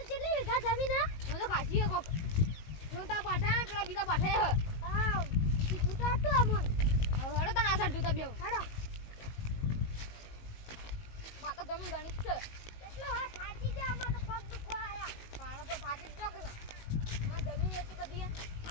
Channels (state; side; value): late; right; 19 ms